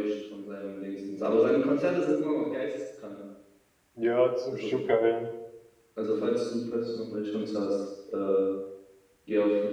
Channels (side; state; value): both; identical; correlation 1.00